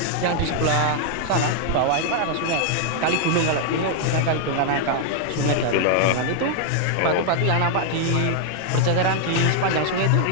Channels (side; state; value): both; different; correlation 0.00